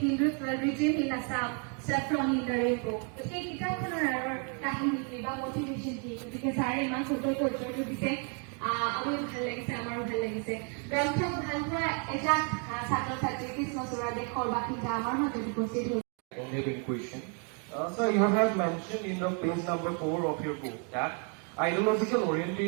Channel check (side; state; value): left; quieter; 39.2 dB